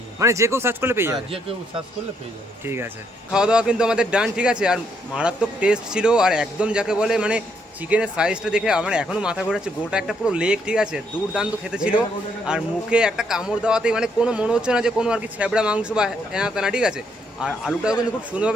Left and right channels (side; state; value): both; normal; correlation 0.73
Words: মানে যে কেউ সার্চ করলে পেয়ে যাবে? যে কেউ সার্চ করলে পেয়ে যাবে। ঠিক আছে। খাওয়া দাওয়া কিন্তু আমাদের ডান, ঠিক আছে? আর মারাত্মক টেস্ট ছিল, আর একদম যাকে বলে মানে চিকেনের সাইজটা দেখে আমার এখনো মাথা ঘোরাচ্ছে। গোটা একটা পুরো লেগ, ঠিক আছে? দুর্দান্ত খেতে ছিল। আর মুখে একটা কামড় দেওয়াতেই মানে কোনো মনে হচ্ছে না যে কোনো আর কি ছেবড়া মাংস বা এনা তেনা, ঠিক আছে? আর আলুটাও কিন্তু খুব